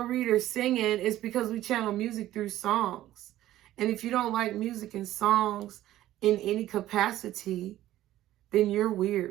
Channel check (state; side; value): quieter; left; 14.1 dB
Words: readers singing? It's because we channel music through songs. And if you don't like music and songs in any capacity, then you're